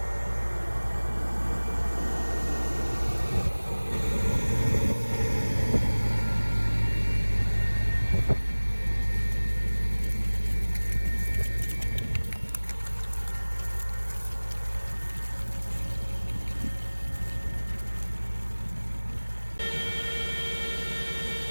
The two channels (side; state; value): both; inverted; correlation -1.00